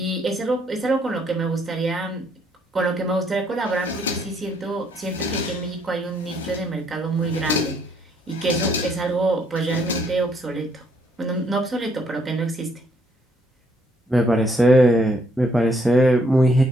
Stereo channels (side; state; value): both; normal; correlation 0.69